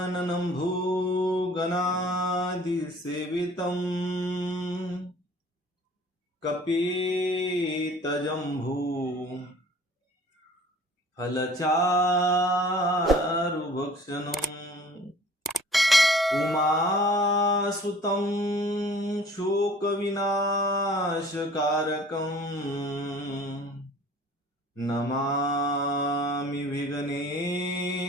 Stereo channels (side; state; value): both; normal; correlation 0.49